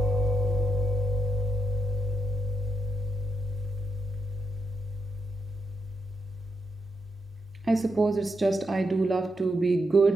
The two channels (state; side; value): normal; both; correlation 0.82